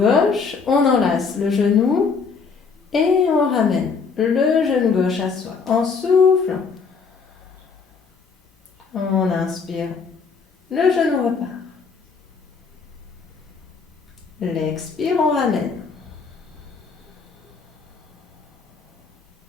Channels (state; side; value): quieter; right; 5.2 dB